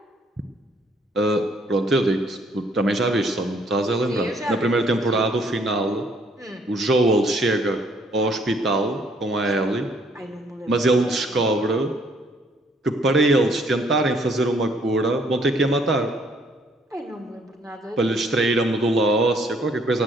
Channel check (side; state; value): both; normal; correlation 0.65